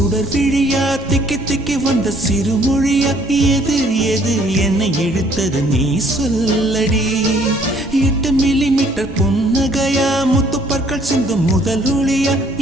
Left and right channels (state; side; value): normal; both; correlation 0.61